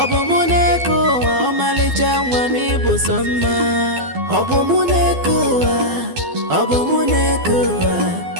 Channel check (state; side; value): late; left; 12 ms